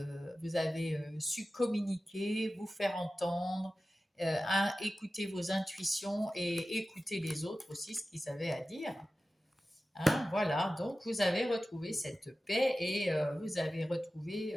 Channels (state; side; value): normal; both; correlation 0.95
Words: vous avez su communiquer, vous faire entendre, écouter vos intuitions et écouter les autres aussi, ce qu'ils avaient à dire. Hein, voilà, donc vous avez retrouvé cette paix et vous avez retrouvé